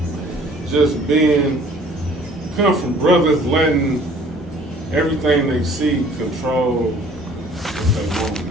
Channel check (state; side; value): normal; both; correlation 0.54